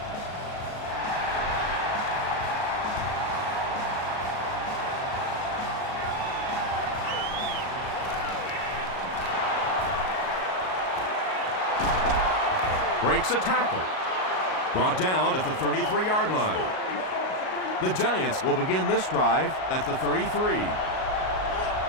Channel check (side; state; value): right; late; 38 ms